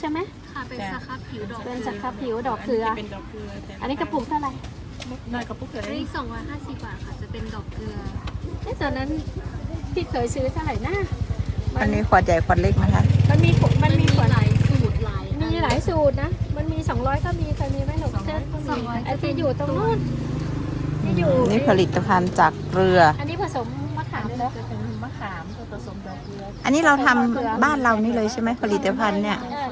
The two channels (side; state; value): both; identical; correlation 1.00